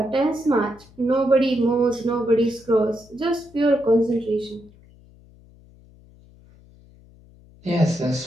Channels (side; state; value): left; noise; hum, 26 dB below the sound